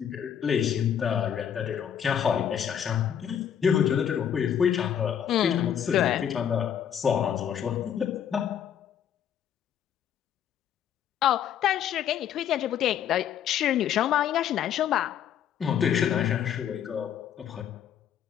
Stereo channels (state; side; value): quieter; right; 9.2 dB